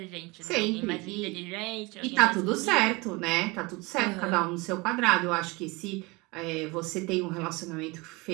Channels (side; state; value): left; quieter; 25.1 dB